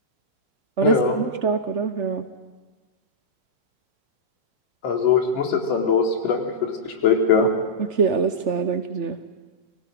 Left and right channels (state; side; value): late; left; 3.4 ms